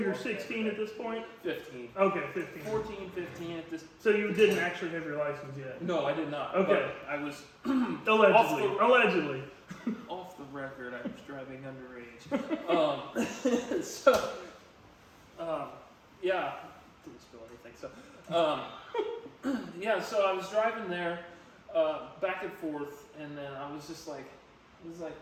walk 16 at this point? 15. Okay, 15. 14, 15 at this. So you didn't actually have your license yet? No, I did not. Okay. But I was Allegedly. off the record. I was driving underage. Yeah, didn't spill anything. So, yeah. So I was driving there. Back and forth, and then I was like,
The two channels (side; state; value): both; identical; correlation 1.00